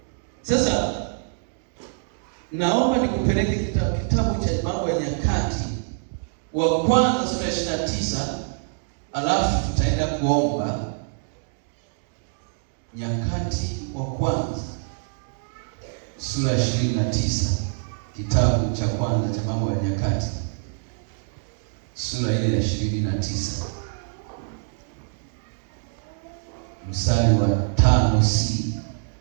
Sasa naomba nikupeleke kitabu cha Mambo ya Nyakati wa kwanza sura 29, alafu tutaenda kuomba. Nyakati wa kwanza sura 29, kitabu cha kwanza cha Mambo ya Nyakati sura ile ya 29 mstari wa 5c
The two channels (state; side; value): silent; left; digital silence